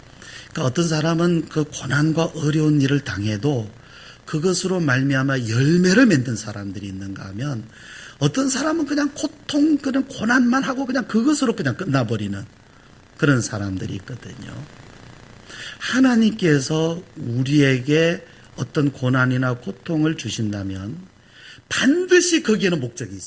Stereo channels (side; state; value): both; identical; correlation 1.00